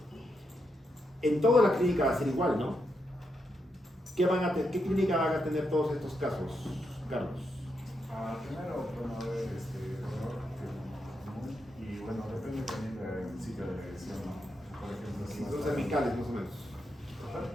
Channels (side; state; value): both; normal; correlation 0.83